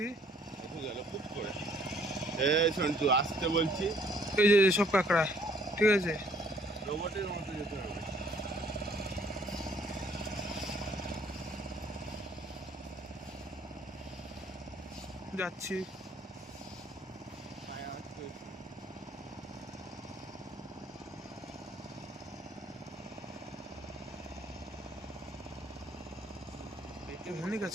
একটু গেল খুব করে। এই সন্টু আস্তে বলছি। এই যে সব কাঁকড়া, ঠিক আছে? রোবটের মতো যেতে হবে। যাচ্ছি। অনেক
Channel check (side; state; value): both; normal; correlation 0.61